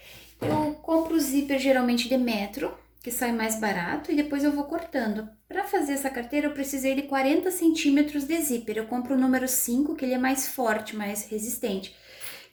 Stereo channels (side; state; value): both; identical; correlation 1.00